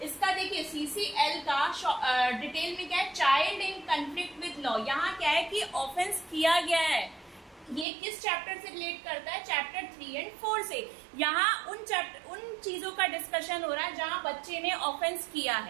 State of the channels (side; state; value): left; drops out; at 7.9 s